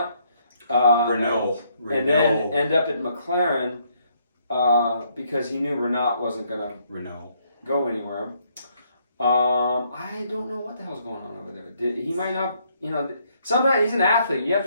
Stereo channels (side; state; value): both; inverted; correlation -0.70